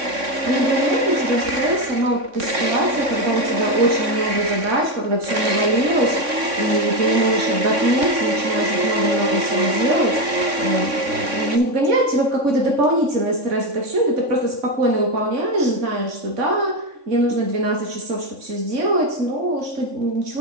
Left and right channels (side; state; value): left; late; 3.6 ms